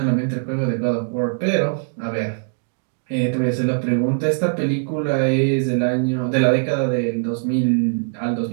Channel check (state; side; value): silent; left; digital silence